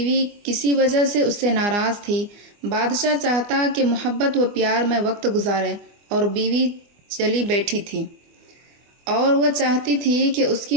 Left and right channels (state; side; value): late; left; 24 ms